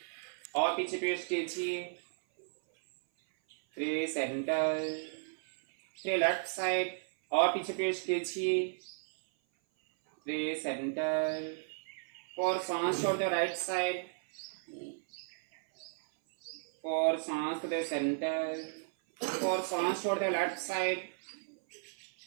और पीछे ट्विस्ट कीजिए। 3 सेंटर, 3 लेफ्ट साइड, और पीछे ट्विस्ट कीजिए। 3 सेंटर, 4 सांस छोड़ते हो राइट साइड, 4 सांस दे सेंटर, 4 सांस छोड़ते हो लेफ्ट साइड,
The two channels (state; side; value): silent; left; 55 dB below the other